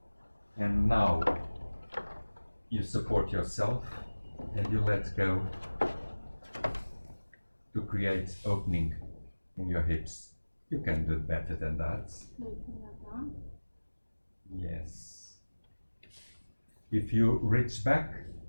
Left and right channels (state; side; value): inverted; both; correlation -1.00